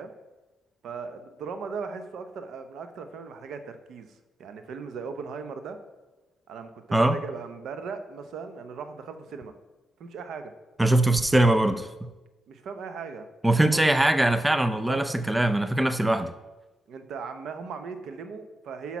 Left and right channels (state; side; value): normal; both; correlation 0.91